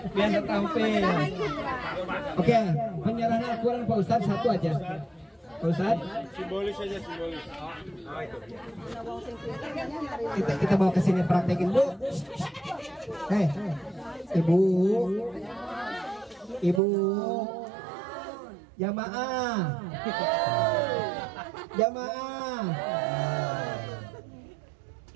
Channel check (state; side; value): drops out; left; at 16.8 s